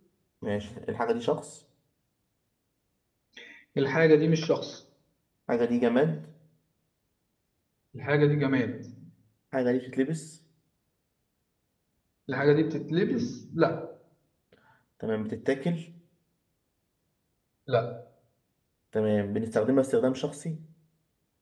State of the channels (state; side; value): identical; both; correlation 1.00